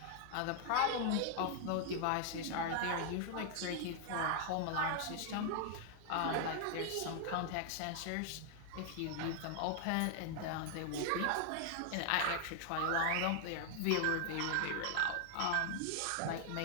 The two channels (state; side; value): different; both; correlation 0.00